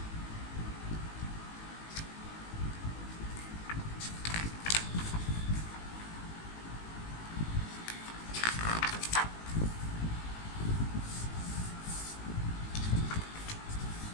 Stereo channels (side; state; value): right; late; 18 ms